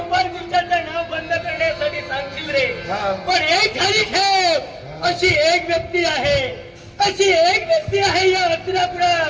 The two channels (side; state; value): both; identical; correlation 1.00